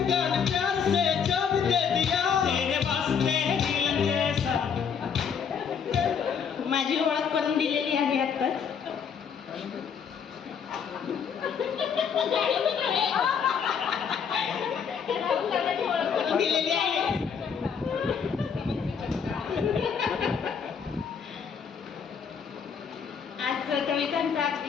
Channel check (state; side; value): quieter; right; 6.9 dB